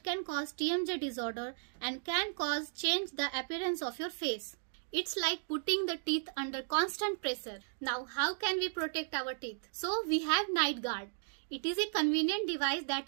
can cause TMJ disorder and can cause change the appearance of your face. It's like putting the teeth under constant pressure. Now, how can we protect our teeth? So, we have night guard. It is a convenient device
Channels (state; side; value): silent; left; digital silence